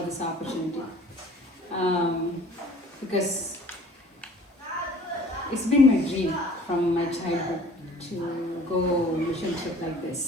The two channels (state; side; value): normal; both; correlation 0.50